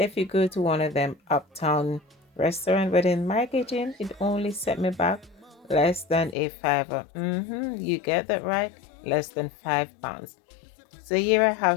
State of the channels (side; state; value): right; drops out; at 6.4 s